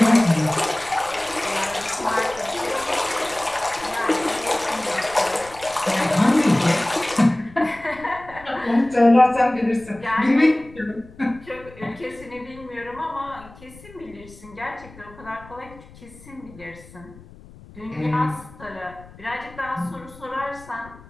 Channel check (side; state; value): left; noise; rumble, 21 dB below the sound